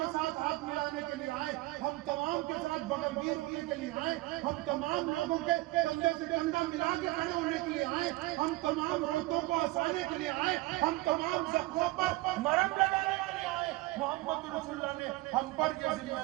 ساتھ ہاتھ ملانے کے لیے آئے، ہم تمام کے ساتھ بغل گیر ہونے کے لیے آئے، ہم تمام لوگوں کے کندھے سے کندھا ملا کے کھڑے ہونے کے لیے آئے، ہم تمام روتوں کو ہنسانے کے لیے آئے، ہم تمام زخموں پر مرہم لگانے کے لیے آئے. محمد رسول اللہ نے ہم پر یہ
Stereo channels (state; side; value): quieter; left; 20.1 dB